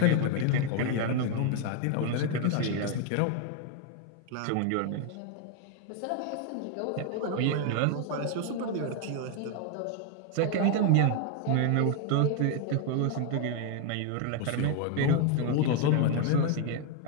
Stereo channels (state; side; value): different; both; correlation 0.00